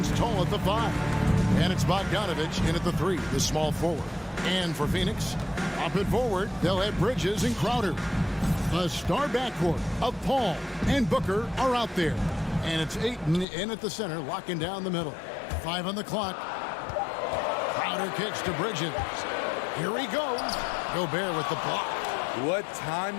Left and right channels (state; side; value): drops out; right; at 13.5 s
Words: tall at the 5. And it's Bogdanovich in at the 3, the small forward. And for Phoenix, up and forward, they'll have Bridges and Crowder. The star backcourt of Paul and Booker are out there. And it's Ayton in at the center, locking down the middle. 5 on the clock. Crowder kicks to Bridges. Here he goes. Gobert with the block. What